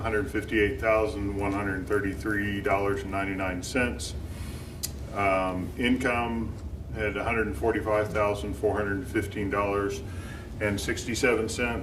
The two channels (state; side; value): identical; both; correlation 1.00